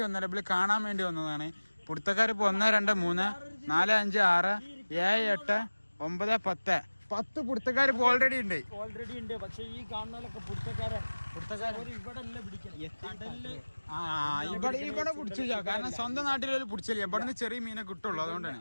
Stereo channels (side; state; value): both; inverted; correlation -1.00